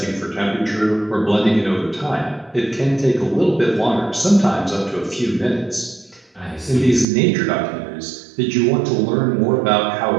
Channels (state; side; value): drops out; left; at 7.1 s